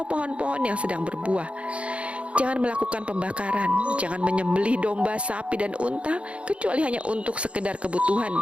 pohon-pohon yang sedang berbuah, jangan melakukan pembakaran, jangan menyembelih domba, sapi, dan unta kecuali hanya untuk sekedar kebutuhan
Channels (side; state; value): left; late; 0.061 ms